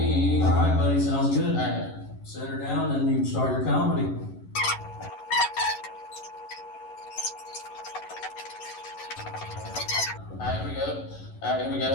All right, buddy, sounds good. All right. Set her down and you can start your comedy. Alright, here we go.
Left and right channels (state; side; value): late; right; 11 ms